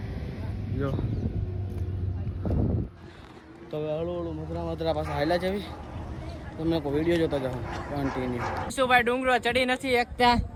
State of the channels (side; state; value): both; identical; correlation 1.00